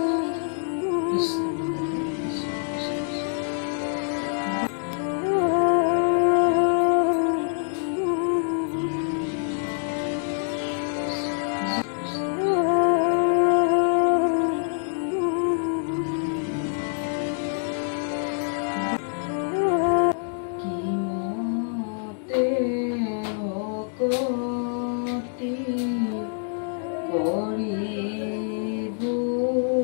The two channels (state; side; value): silent; right; 61 dB below the other